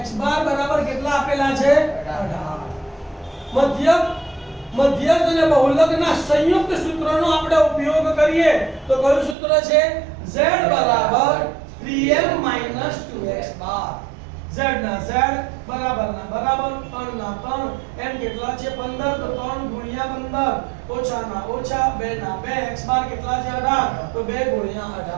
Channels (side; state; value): left; drops out; at 9.3 s